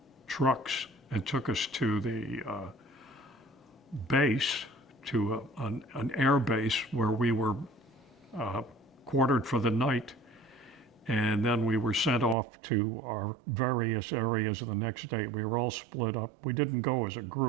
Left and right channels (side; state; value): left; drops out; at 12.4 s